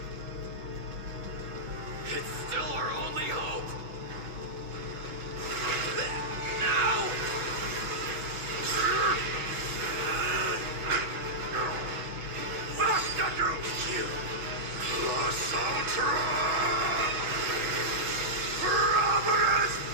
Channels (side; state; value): left; late; 6.1 ms